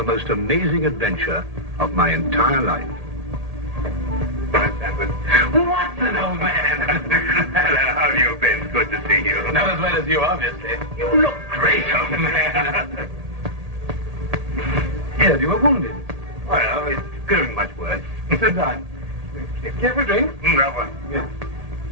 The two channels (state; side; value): late; left; 1.8 ms